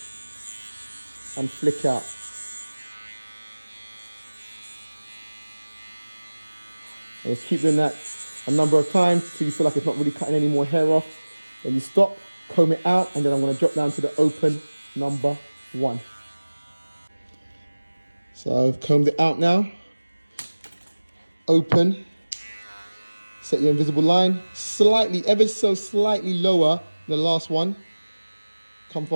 and flick out. And just keep doing that a number of times till you feel like it's not really cutting any more hair off. Then you stop, comb it out, and then I'm going to drop down to the open number 1. So I've combed it out now. Open. Set your invisible line slightly, ever so slightly lower than the last one. Come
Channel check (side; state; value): both; inverted; correlation -1.00